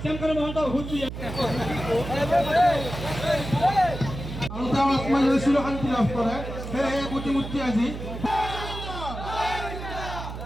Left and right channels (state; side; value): noise; right; hum, 8 dB below the sound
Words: শ্যামকানু মহন্ত হুঁশিয়াৰ আৰু তেওঁ আত্মজয় চিৰশান্তি লাভ কৰে সেয়েহে প্ৰতিমূৰ্তি আজি